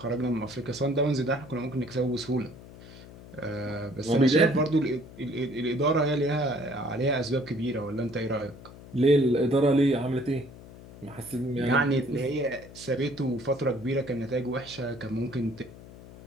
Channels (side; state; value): left; noise; hum, 18 dB below the sound